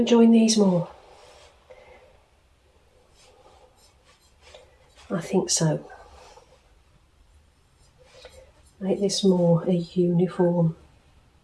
these more? I think so. Make this more a uniform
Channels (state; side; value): identical; both; correlation 1.00